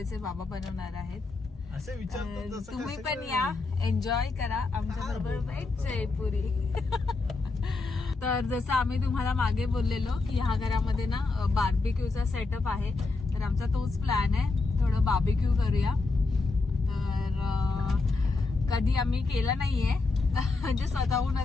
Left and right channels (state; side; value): quieter; right; 3.7 dB